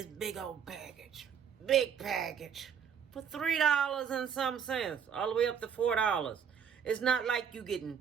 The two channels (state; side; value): quieter; left; 7.5 dB